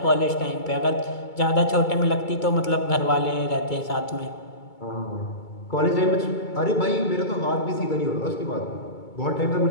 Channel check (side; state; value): right; late; 2.3 ms